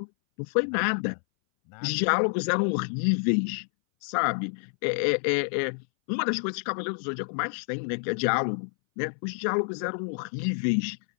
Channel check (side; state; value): right; silent; 59 dB below the other